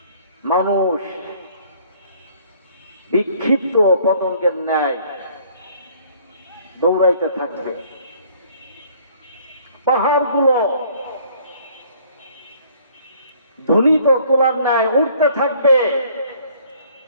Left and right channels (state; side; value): inverted; both; correlation -0.59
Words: মানুষ বিক্ষিপ্ত পতঙ্গের ন্যায় দৌড়াইতে থাকবে। পাহাড়গুলো ধ্বনিত তোলার ন্যায় উঠতে থাকবে